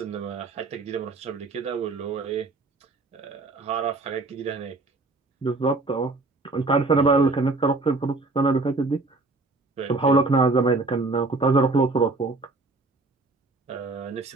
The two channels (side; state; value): left; quieter; 3.4 dB